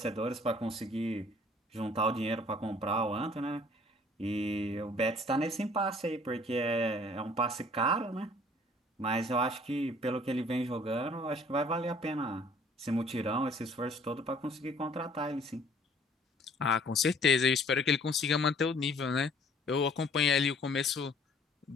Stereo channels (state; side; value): normal; both; correlation 0.55